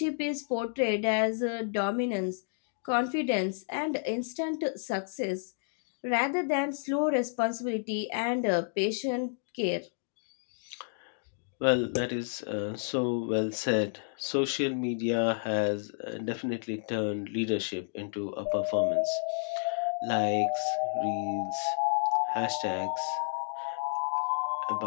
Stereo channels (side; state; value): right; silent; digital silence